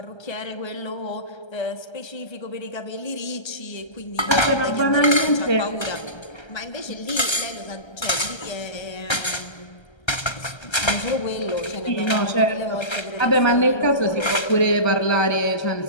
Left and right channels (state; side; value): late; right; 1.3 ms